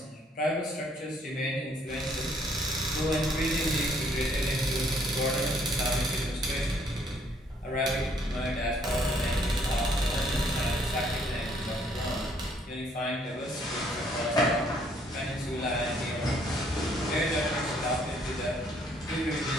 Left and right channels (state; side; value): normal; both; correlation 0.65